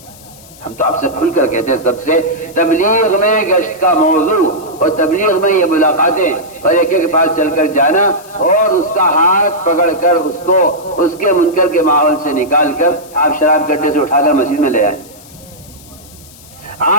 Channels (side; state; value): left; noise; hiss, 22 dB below the sound